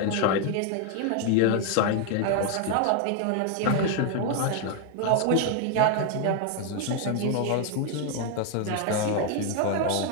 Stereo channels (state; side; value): different; both; correlation 0.00